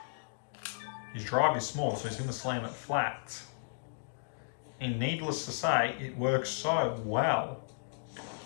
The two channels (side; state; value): right; silent; digital silence